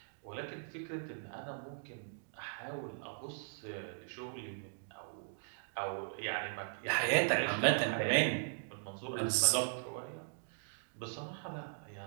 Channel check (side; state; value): left; silent; digital silence